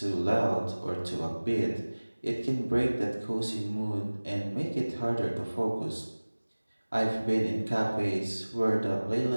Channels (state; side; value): inverted; both; correlation -1.00